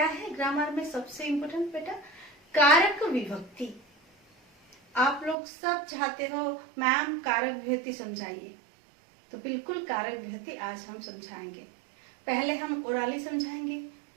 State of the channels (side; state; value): left; drops out; at 5.4 s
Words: है ग्रामर में सबसे इम्पोर्टेंट बेटा? कारक विभक्ति। आप लोग सब चाहते हो मैम कारक विभक्ति समझाइए, तो बिल्कुल कारक विभक्ति आज हम समझाएंगे। पहले हम ओरली समझाएंगे,